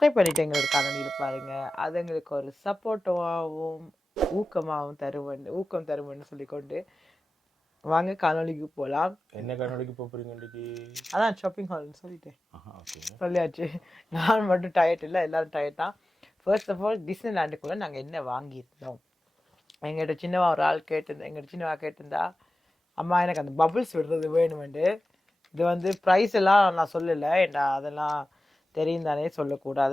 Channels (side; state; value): both; normal; correlation 0.95